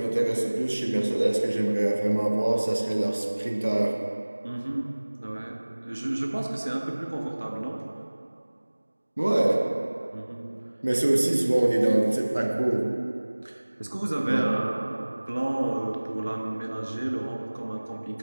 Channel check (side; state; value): both; inverted; correlation -1.00